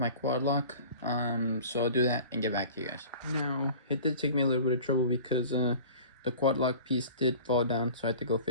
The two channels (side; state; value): both; inverted; correlation -0.43